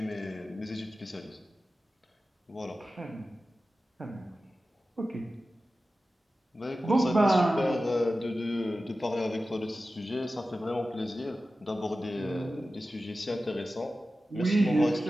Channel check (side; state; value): both; normal; correlation 0.94